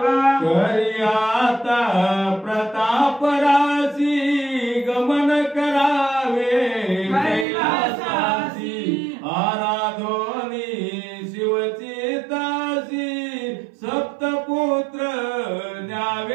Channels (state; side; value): drops out; left; at 7.5 s